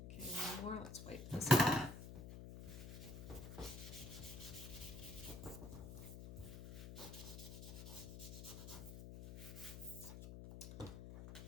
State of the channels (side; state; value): left; noise; hum, 10 dB below the sound